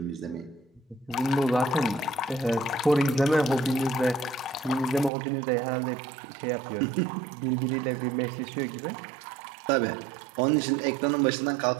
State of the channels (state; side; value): drops out; left; at 5.1 s